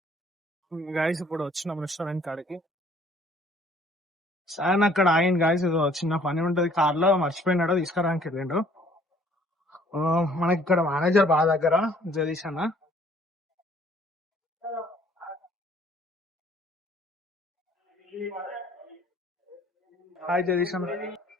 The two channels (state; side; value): normal; both; correlation 0.59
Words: గాయస్ ఇప్పుడు వచ్చినాం రెస్టారెంట్ కాడికి. సార్ అక్కడ ఆగింది గాయస్, చిన్న పని ఉంటది కార్ లో, మర్చిపోయినాడు, తీసుకురానికి వెళ్ళిండు. మనకి ఇక్కడ మేనేజర్ బాగా దగ్గర జగదీష్ అన్న. హాయ్ జగదీష్